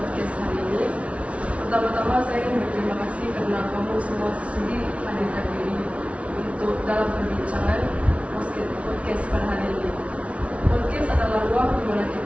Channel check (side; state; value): left; late; 0.063 ms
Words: hari ini. Pertama-tama saya ingin berterima kasih karena kamu semua sudi hadirkan diri untuk dalam perbincangan podcast pada hari ini. Podcast adalah ruang di mana